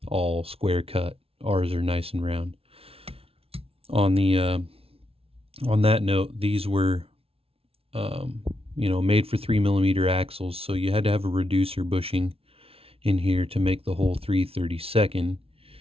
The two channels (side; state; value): left; late; 0.27 ms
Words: all square cut. Ours are nice and round. On that note, these were made for 3mm axles, so you had to have a reducer bushing in here to make the whole 3/16,